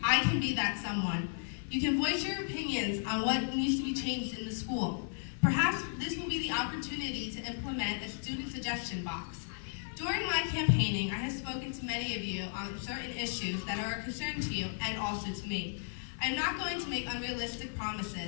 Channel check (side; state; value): right; silent; 55 dB below the other